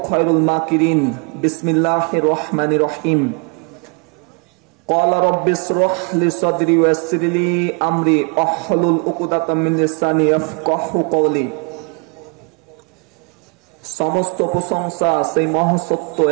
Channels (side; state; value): left; quieter; 35.9 dB